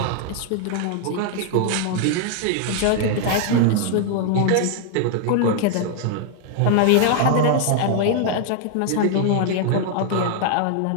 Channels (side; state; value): both; different; correlation 0.00